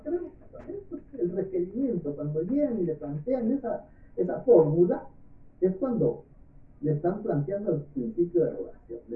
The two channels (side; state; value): both; identical; correlation 1.00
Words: casar. Esto es el requerimiento. Cuando llegan y le plantean esa fórmula, es cuando le están planteando el principio de rogación. Le